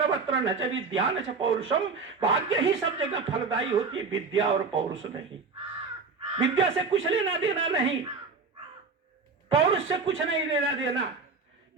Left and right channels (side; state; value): left; quieter; 4.6 dB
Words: न च विद्या न च पौरुषम, भाग्य ही सब जगह फलदायी होती है, विद्या और पौरुष नहीं। विद्या से कुछ लेना देना नहीं, पौरुष से कुछ नहीं लेना देना।